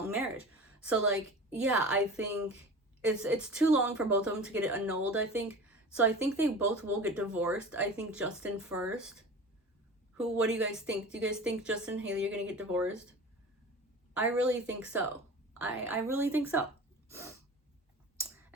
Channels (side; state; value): both; normal; correlation 0.36